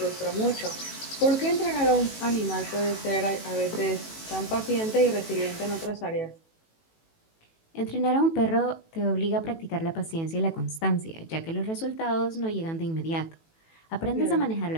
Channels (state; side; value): late; right; 18 ms